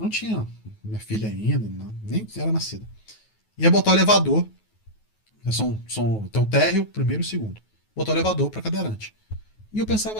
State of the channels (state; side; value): late; right; 9.3 ms